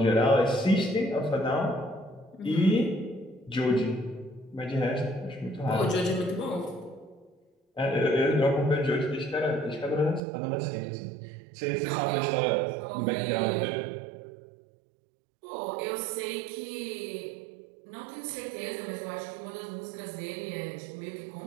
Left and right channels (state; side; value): drops out; left; at 10.2 s